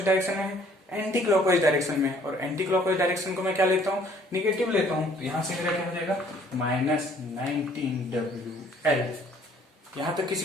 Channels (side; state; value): both; normal; correlation 0.59